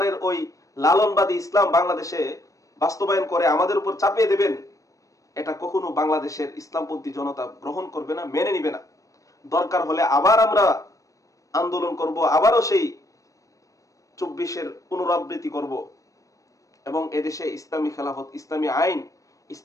ওই লালনবাদী ইসলাম বাংলাদেশে বাস্তবায়ন করে আমাদের উপর চাপিয়ে দেবেন, এটা কখনো বাংলাদেশের ইসলামপন্থী জনতা গ্রহণ করবে না, মেনে নিবে না। দরকার হলে আবার আমরা আন্দোলন করব, আবারও সেই 24-এর পুনরাবৃত্তি করব এবং এদেশে ইসলামী খেলাফত, ইসলামী আইন,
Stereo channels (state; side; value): late; right; 0.16 ms